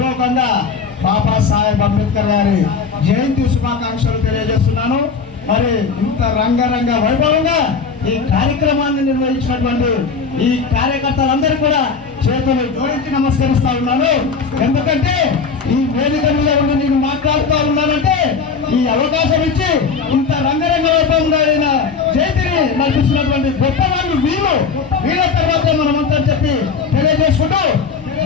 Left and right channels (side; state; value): right; quieter; 5.3 dB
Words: బాబాసాహెబ్ అంబేద్కర్ గారి జయంతి శుభాకాంక్షలు తెలియజేస్తున్నాను. మరి ఇంత రంగరంగ వైభవంగా ఈ కార్యక్రమాన్ని నిర్వహించినటువంటి ఈ కార్యకర్తలందరూ కూడా చేతులు జోడించి నమస్కరిస్తా ఉన్నాను. ఎందుకంటే ఈ వేదిక మీద ఉండి నేను మాట్లాడుతూ ఉన్నానంటే ఈ అవకాశం ఇచ్చి ఇంత రంగరంగ వైభవంగా జయంతిని నడిపిస్తున్నటువంటి గొప్ప వాళ్ళు వీళ్ళ తర్వాత మనమంతా చెప్పి తెలియజేసుకుంటూ